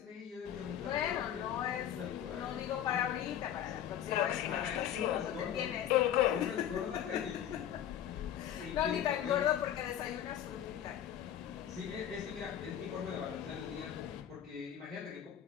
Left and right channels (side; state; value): right; quieter; 10.4 dB